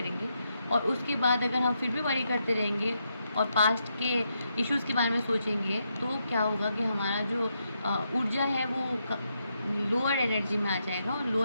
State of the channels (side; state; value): both; inverted; correlation -0.81